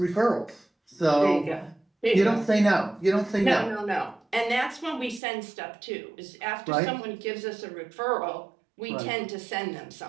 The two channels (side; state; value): left; drops out; at 5.2 s